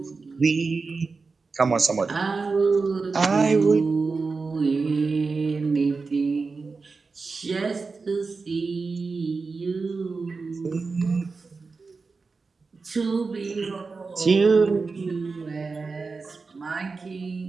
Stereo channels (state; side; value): quieter; left; 4.3 dB